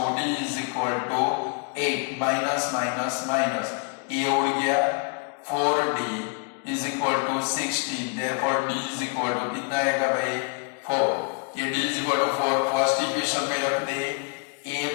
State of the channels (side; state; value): right; quieter; 37.9 dB